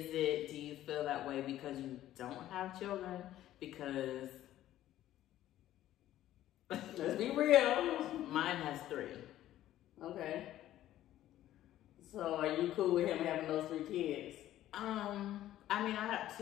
feel that way because you don't have children? Because let's be real. Mine has 3. Okay. So are you cool with him having those 3 kids? I mean, I have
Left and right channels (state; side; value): quieter; right; 13.3 dB